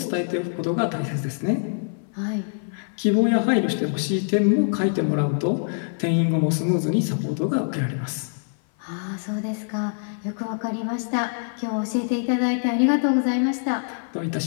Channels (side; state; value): right; silent; 56 dB below the other